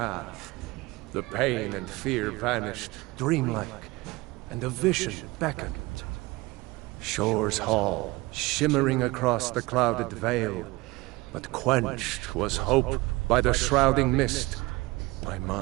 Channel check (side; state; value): left; quieter; 21.9 dB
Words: The pain and fear vanished, dreamlike, and a vision beckoned. Shore's Hall, shimmering across the clouded veil, but quenched was hope by the shrouding mist. My